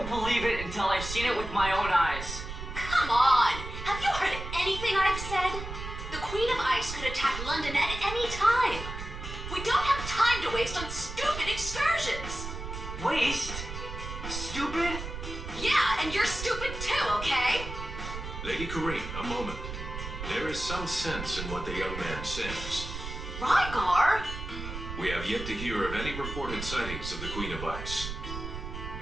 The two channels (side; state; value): right; noise; rumble, 8 dB below the sound